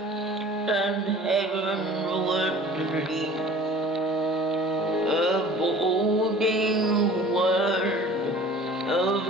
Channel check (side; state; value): both; normal; correlation 0.46